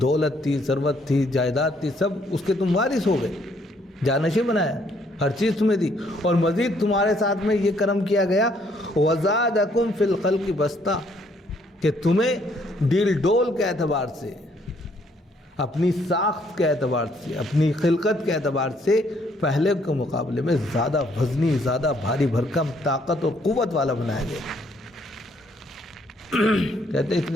دولت تھی، ثروت تھی، جائیداد تھی، سب اس کے تم وارث ہو گئے، جانشین بنایا، ہر چیز تمہیں دی، اور مزید تمہارے ساتھ میں یہ کرم کیا گیا وَزَادَكُمْ فِي الْخَلْقِ بَسْطَةً، کہ تمہیں ڈیل ڈول کے اعتبار سے، اپنی ساخت کے اعتبار سے، اپنی خلقت کے اعتبار سے پہلے کے مقابلے میں زیادہ وزنی، زیادہ بھاری بھرکم، طاقت اور قوت والا بنایا گیا۔ کہتے ہیں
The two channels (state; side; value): normal; both; correlation 0.67